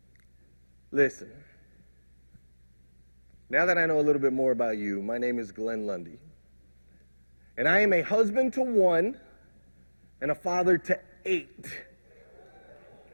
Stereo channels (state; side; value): inverted; both; correlation -1.00